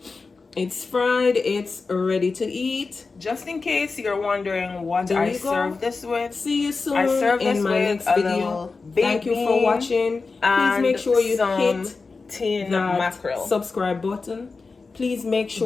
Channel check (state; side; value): quieter; right; 4.2 dB